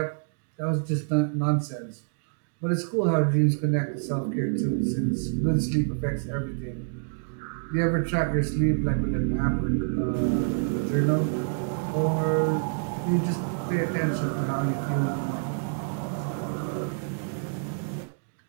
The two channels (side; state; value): left; silent; digital silence